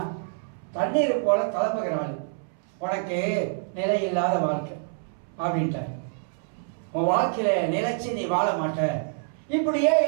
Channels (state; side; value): silent; left; 61 dB below the other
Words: தண்ணீர் போல கிளம்புகிறாள், உனக்கு நிலை இல்லாத வாழ்க்கை அப்படின்ட்ட. உன் வாழ்க்கையில நிலைச்சு நீ வாழ மாட்ட. இப்படியே